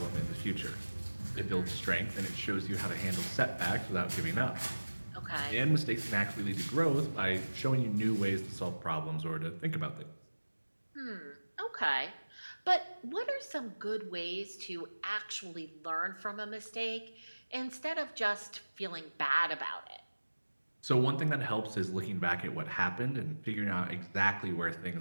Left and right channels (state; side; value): inverted; both; correlation -1.00